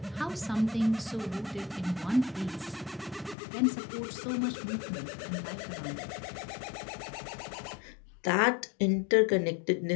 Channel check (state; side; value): drops out; right; at 3.4 s